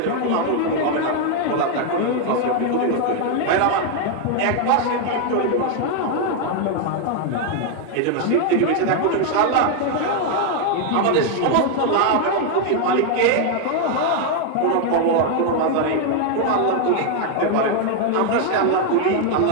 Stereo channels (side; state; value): both; different; correlation 0.01